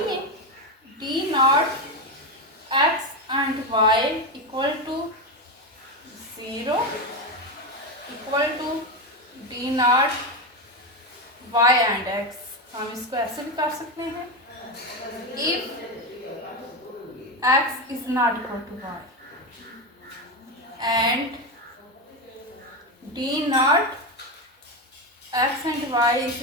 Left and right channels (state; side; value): normal; both; correlation 0.13